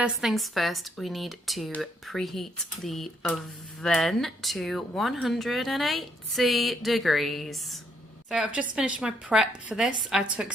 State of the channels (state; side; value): normal; both; correlation 0.72